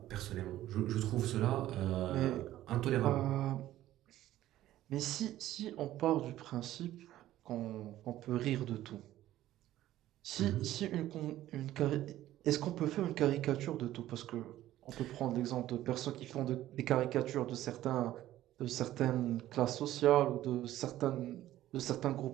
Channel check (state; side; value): quieter; left; 14.0 dB